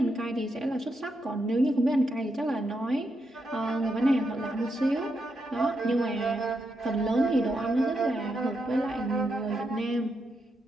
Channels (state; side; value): normal; both; correlation 0.83